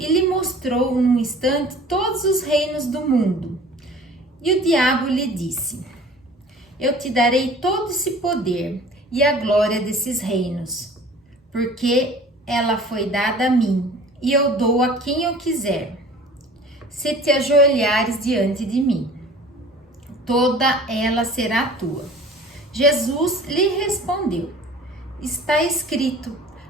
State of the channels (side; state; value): both; normal; correlation 0.46